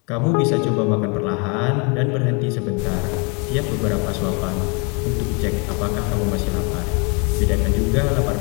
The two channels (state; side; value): quieter; right; 33.0 dB